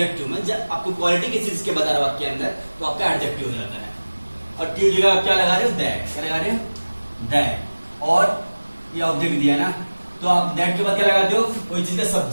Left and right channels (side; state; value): both; inverted; correlation -1.00